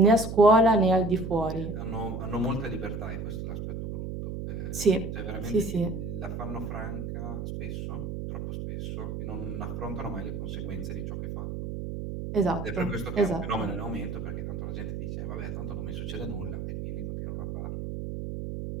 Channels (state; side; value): noise; right; hum, 5 dB below the sound